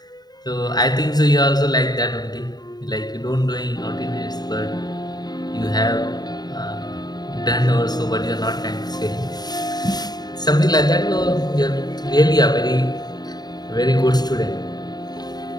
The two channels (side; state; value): right; late; 0.20 ms